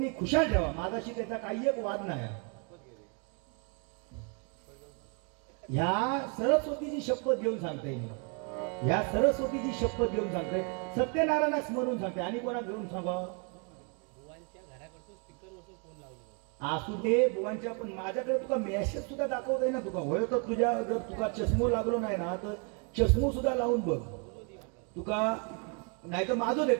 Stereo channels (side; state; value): left; quieter; 36.0 dB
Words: खुशाल ठेवा, माझाशी त्याचा काही एक वाद नाही. ह्या सरस्वतीची शपथ घेऊन सांगते मी, ह्या सरस्वतीची शपथ घेऊन सांगते, सत्यनारायणा स्मरून सांगते. आणि कोणा घेऊन सांगा, असू दे बुवांच्या, पण माझ्याकडे तुका मेसेज सुद्धा दाखवता ना. तुका होय तर तुझ्या जर तुका चष्मो लागलो नाही ना तर चष्मो सुद्धा लावून बघ. तुका नाही तर माझं